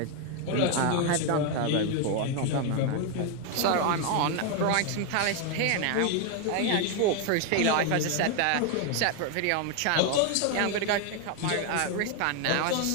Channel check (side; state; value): both; different; correlation 0.01